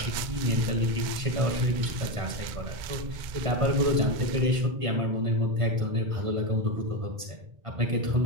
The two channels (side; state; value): left; late; 1.5 ms